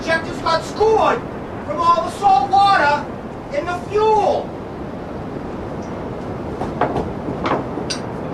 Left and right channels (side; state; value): both; identical; correlation 1.00